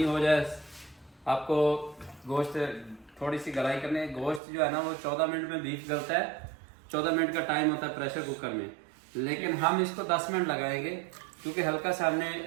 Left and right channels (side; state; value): left; drops out; at 4.4 s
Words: हो जाए आपको गोश्त थोड़ी सी गलाई करने। गोश्त जो है ना वो 14 मिनट में बीफ गलता है, 14 मिनट का टाइम होता है प्रेशर कुकर में, लेकिन हम इसको 10 मिनट लगाएंगे, क्योंकि हल्का सा हमने